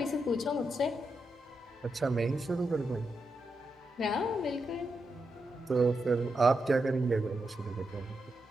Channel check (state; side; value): normal; both; correlation 0.86